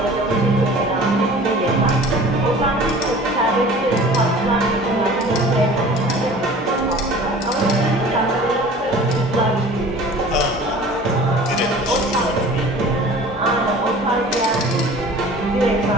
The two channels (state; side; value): normal; both; correlation 0.44